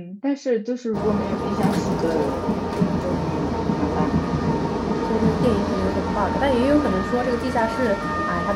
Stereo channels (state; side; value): identical; both; correlation 1.00